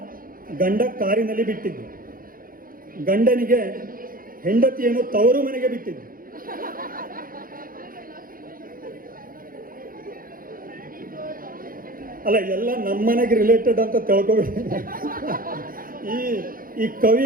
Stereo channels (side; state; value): left; late; 0.41 ms